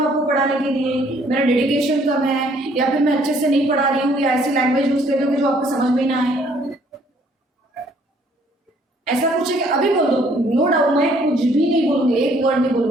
आपको पढ़ाने के लिए, मेरा डेडिकेशन कम है, या फिर मैं अच्छे से नहीं पढ़ा रही हूँ, या ऐसी लैंग्वेज यूज कर रही हूँ कि जो आपको समझ में ना आए? ऐसा कुछ है कि अभी बोल दो, नो डाउट मैं कुछ भी नहीं बोलूंगी, एक वर्ड नहीं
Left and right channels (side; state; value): both; normal; correlation 0.62